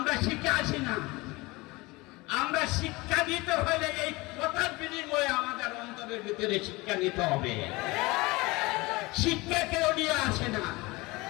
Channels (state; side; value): quieter; right; 23.0 dB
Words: শিক্ষা আসি না, আমরা শিক্ষা নিতে হলে এই কথার বিনিময়ে আমাদের অন্তরের ভিতরে শিক্ষা নিতে হবে। শিক্ষা কেউ নিয়ে আসে না।